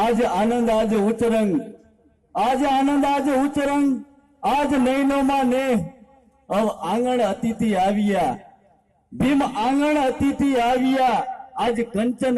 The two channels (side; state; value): both; identical; correlation 1.00